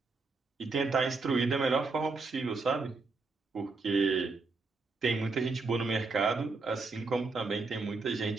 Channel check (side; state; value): left; quieter; 4.0 dB